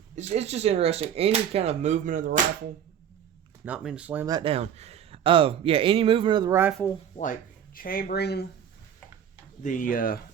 it's just interesting. Any kind of movement of the rifle, not mean to slam that down. Any movement of the rifle, like chambering the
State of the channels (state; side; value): quieter; left; 9.0 dB